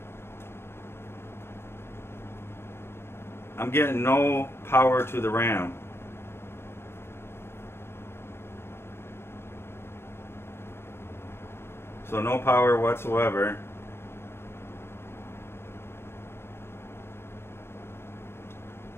I'm getting no power to the RAM. So no power whatsoever.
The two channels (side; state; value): right; late; 0.12 ms